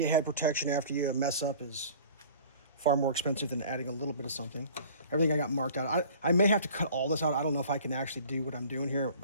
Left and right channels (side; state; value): both; inverted; correlation -0.46